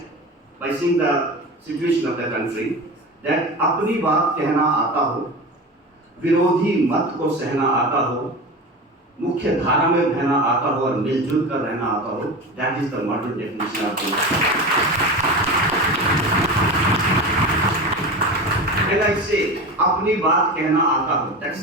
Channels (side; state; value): both; normal; correlation 0.28